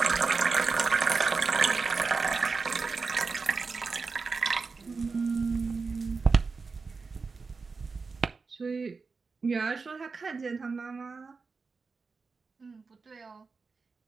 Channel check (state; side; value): quieter; left; 4.5 dB